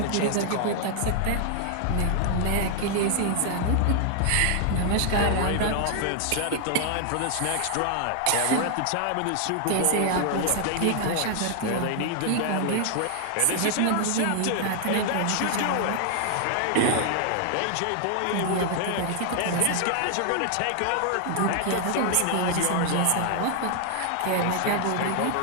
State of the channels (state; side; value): different; both; correlation 0.00